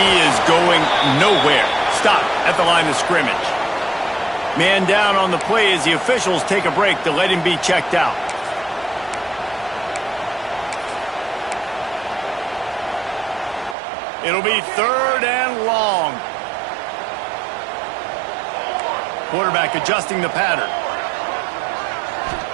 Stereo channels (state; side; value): drops out; left; at 13.8 s